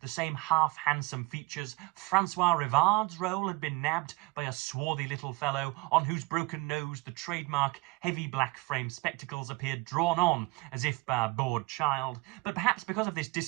the same half-handsome features. Francois Rivard's role had been nabbed by a swarthy little fellow on whose broken nose the trademark heavy black frame spectacles appeared drawn on, as if by a bored child. But perhaps because of this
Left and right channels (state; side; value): quieter; left; 24.9 dB